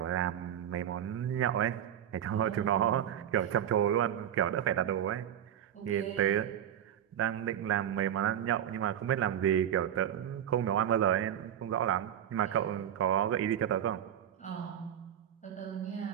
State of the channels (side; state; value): left; quieter; 10.2 dB